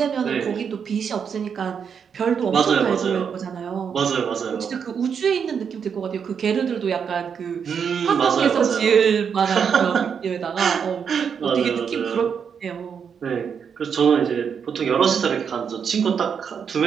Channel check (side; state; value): left; quieter; 7.0 dB